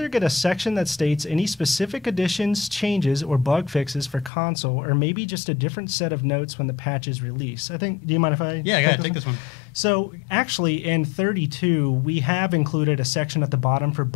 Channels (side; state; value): right; drops out; at 4.3 s